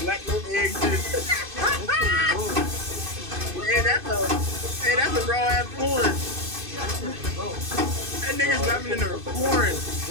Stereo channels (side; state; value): left; late; 2.6 ms